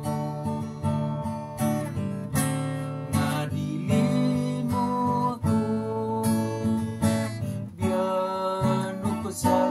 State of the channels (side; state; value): both; identical; correlation 1.00